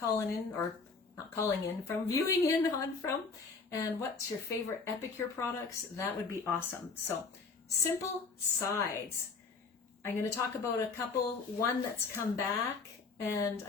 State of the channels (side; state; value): right; quieter; 4.5 dB